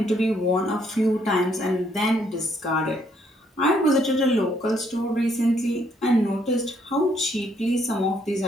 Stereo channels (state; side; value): normal; both; correlation 0.70